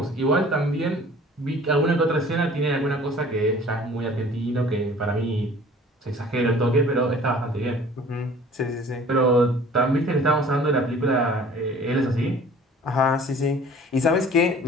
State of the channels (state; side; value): normal; both; correlation 0.49